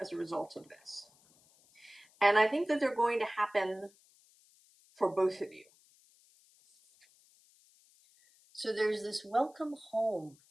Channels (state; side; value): noise; left; hiss, 30 dB below the sound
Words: a result of this. And I think that they're going to happen for both of you. So there's this welcome home.